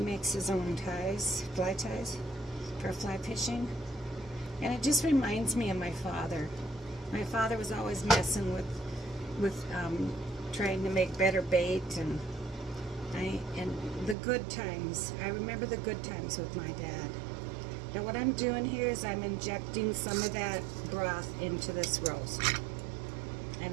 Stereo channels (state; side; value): drops out; left; at 14.2 s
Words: his own fly ties for fly fishing, and it just reminds me of my father. My father was always messing with trying to make better bait, and the good times. I remember the good times with my dad. Now what I'm doing here is I'm injecting some of that broth into this roast,